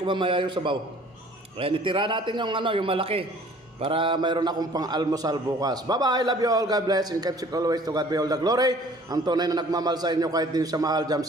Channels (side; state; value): both; normal; correlation 0.52